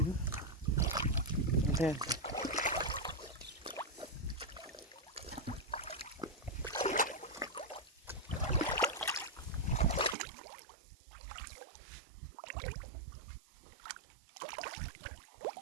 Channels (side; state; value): left; drops out; at 10.2 s